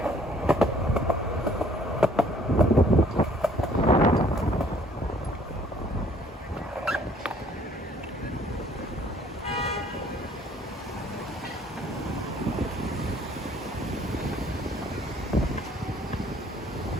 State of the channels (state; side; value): normal; both; correlation 0.60